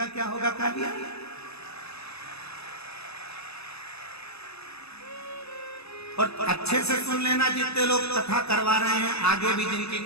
क्या होगा कालिया? और अच्छे से सुन लेना, जितने लोग कथा करवा रहे हैं, आगे भी जिनकी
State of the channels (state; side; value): late; right; 0.79 ms